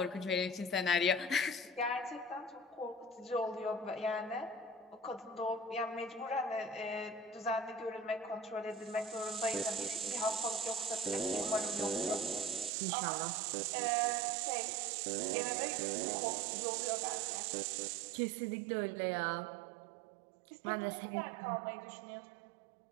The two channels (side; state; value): left; drops out; at 12.7 s